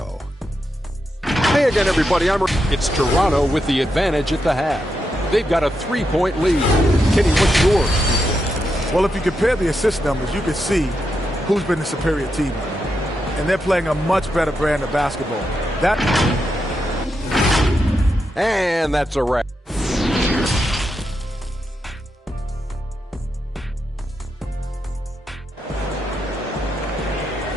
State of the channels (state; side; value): normal; both; correlation 0.85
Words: Hey again, everybody. It's Toronto with the advantage at the half. They've got a 3-point lead. Kenny, what's yours? Well, if you compare the assist numbers, you can see who's been the superior team. And they're playing a much better brand of basketball. And that's a wrap.